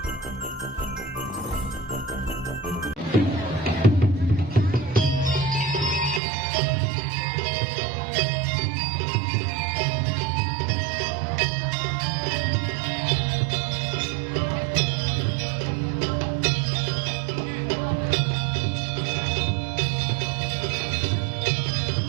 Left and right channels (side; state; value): left; drops out; at 6.2 s